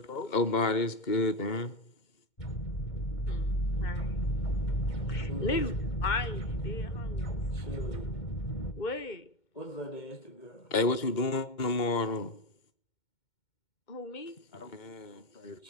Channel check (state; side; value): late; right; 2.2 ms